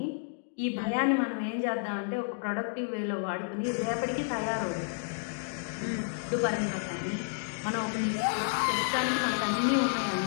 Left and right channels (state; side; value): silent; right; digital silence